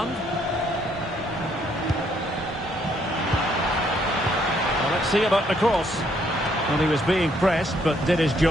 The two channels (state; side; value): normal; both; correlation 0.69